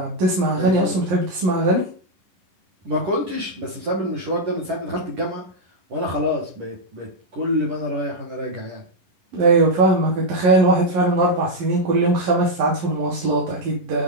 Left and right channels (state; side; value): late; left; 10 ms